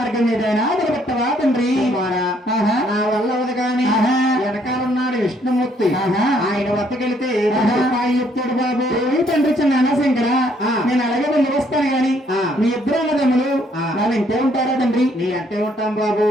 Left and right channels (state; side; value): normal; both; correlation 0.67